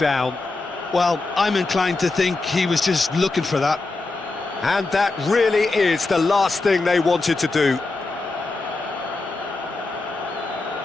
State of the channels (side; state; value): right; quieter; 3.5 dB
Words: Well, I'm inclined to think he was just looking for that. And that really is the last thing they wanted to do.